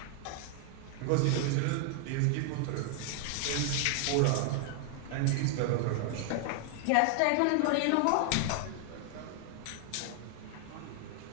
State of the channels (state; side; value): different; both; correlation 0.00